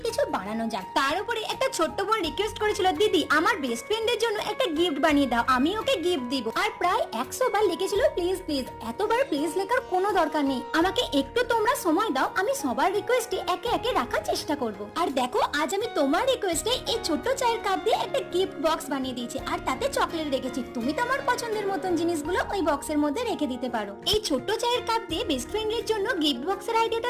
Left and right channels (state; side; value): identical; both; correlation 1.00